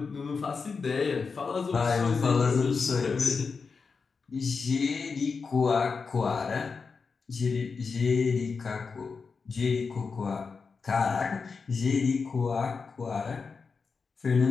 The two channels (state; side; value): quieter; right; 5.0 dB